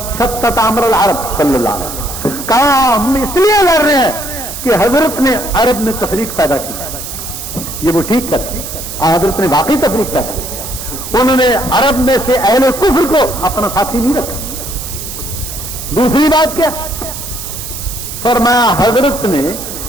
شتت امر العرب صلی اللہ علیہ وسلم، کہا ہم اس لیے لڑ رہے ہیں کہ حضرت نے عرب میں تفریق پیدا کی. یہ وہ ٹھیک کرتے، حضرت نے واقعی تفریق پیدا کی. انہوں نے عرب میں سے اہل کفر کو اپنا ساتھی نہیں رکھا. دوسری بات کیا فرمایا، حضرت نے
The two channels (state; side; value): noise; right; hiss, 8 dB below the sound